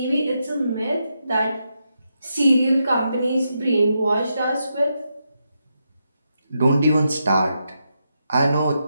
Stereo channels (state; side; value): inverted; both; correlation -0.84